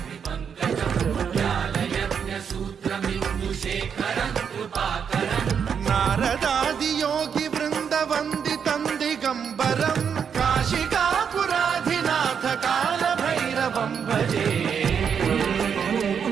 व्यालयज्ञसूत्रमिन्दुशेखरं कृपाकरं नारदादियोगिवृन्दवन्दितं दिगम्बरं काशिकापुराधिनाथ कालभैरवं भजे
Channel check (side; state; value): left; quieter; 7.2 dB